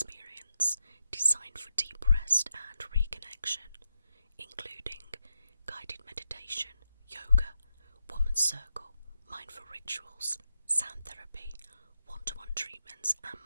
designed for deep rest and reconnection, including guided meditation, yoga, woman's circle, mindful rituals, sound therapy, one-to-one treatments, and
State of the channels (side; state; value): both; inverted; correlation -0.86